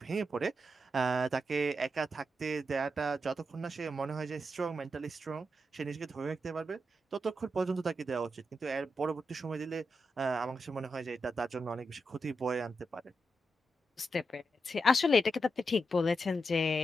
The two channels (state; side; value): normal; both; correlation 0.86